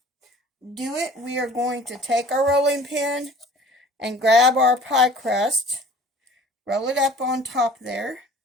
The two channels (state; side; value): normal; both; correlation 0.48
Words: do it. We are going to take our rolling pin and grab our pie crust, roll it up on top there,